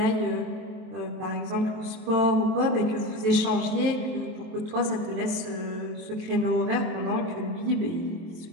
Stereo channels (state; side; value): late; left; 23 ms